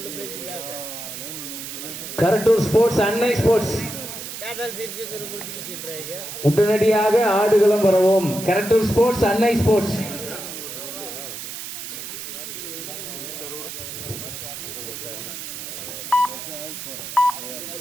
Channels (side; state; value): right; noise; hiss, 8 dB below the sound